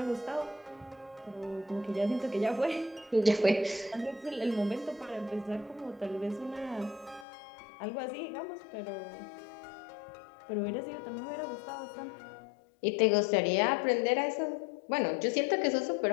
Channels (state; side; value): drops out; right; at 7.2 s